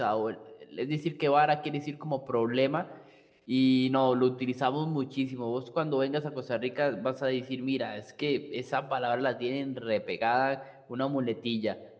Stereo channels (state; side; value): identical; both; correlation 1.00